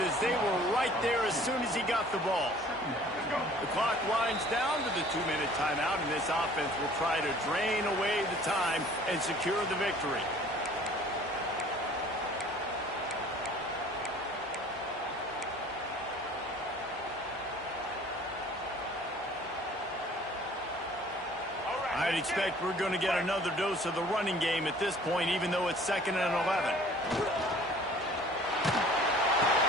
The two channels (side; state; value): both; normal; correlation 0.51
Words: as they were right there as soon as he got the ball. The clock winds down to the 2-minute timeout, and this offense will try to drain away the time and secure the victory. I'd expect we're going to get another dose of the running game at this point, even though it's 2nd and 11.